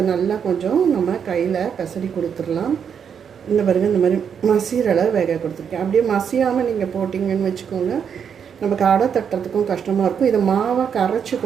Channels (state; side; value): quieter; left; 7.5 dB